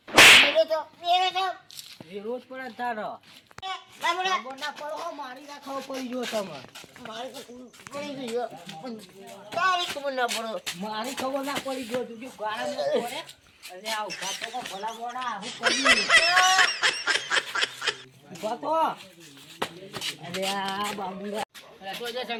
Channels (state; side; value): identical; both; correlation 1.00